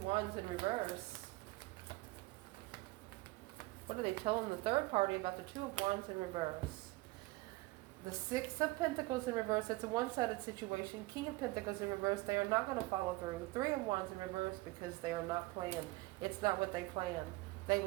in reverse? What are they telling the third party about the 2 of Wands in reverse? The 6 of Pentacles in reverse, it's a one-sided situation. King of Pentacles in reverse, they are not going to follow through. 3 of Wands in reverse because they are not planned. It's not what they planned. They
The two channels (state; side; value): quieter; left; 21.6 dB